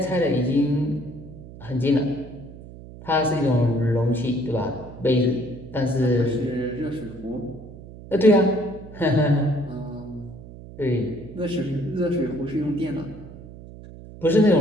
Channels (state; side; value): noise; right; hum, 16 dB below the sound